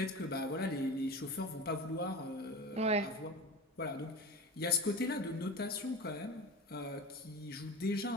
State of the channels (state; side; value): normal; both; correlation 0.30